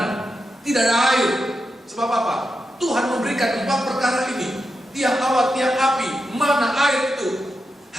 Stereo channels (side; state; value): both; normal; correlation 0.87